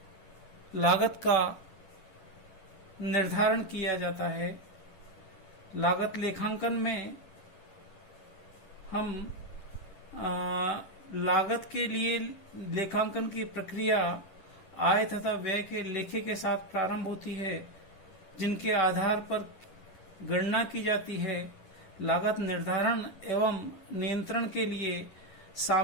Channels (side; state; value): right; late; 10 ms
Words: लागत का निर्धारण किया जाता है। लागत लेखांकन में हम लागत के लिए लेखांकन की प्रक्रिया आय तथा व्यय के लेखे के साथ प्रारंभ होती है, जिनके आधार पर गणना की जाती है। लागत निर्धारण एवं नियंत्रण के लिए